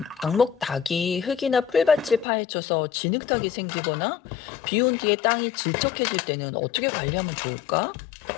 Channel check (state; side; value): drops out; right; at 2.2 s